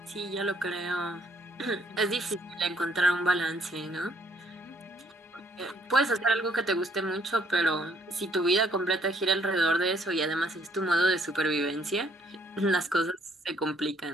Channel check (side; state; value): both; normal; correlation 0.65